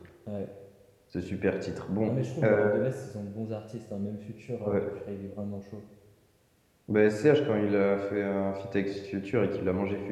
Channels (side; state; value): both; identical; correlation 1.00